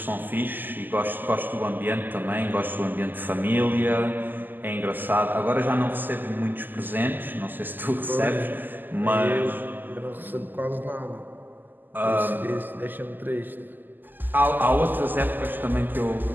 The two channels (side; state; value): left; late; 0.089 ms